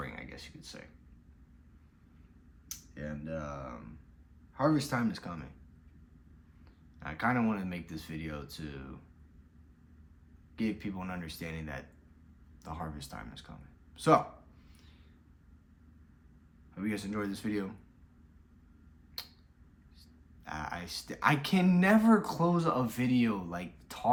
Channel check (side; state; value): both; identical; correlation 1.00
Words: I guess you could say. And harvest time is coming. I kind of want to make this video to give people an understanding that the harvest time is coming. So, hope you guys enjoyed this video. I can never close a video like